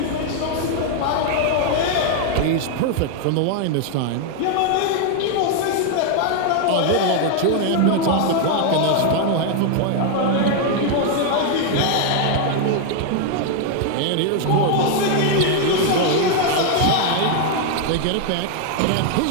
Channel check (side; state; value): both; different; correlation 0.00